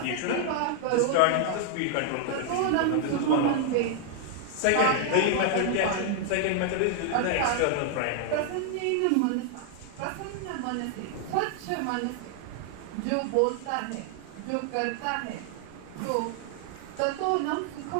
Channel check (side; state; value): both; different; correlation 0.00